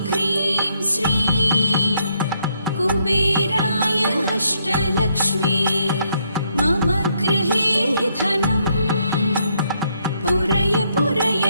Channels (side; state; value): both; inverted; correlation -0.74